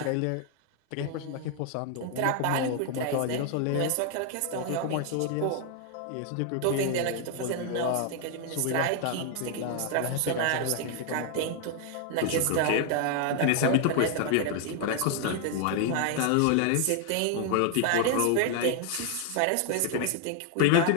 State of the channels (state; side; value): different; both; correlation 0.00